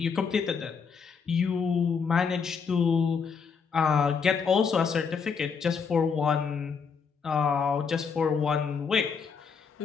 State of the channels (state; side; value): quieter; right; 5.9 dB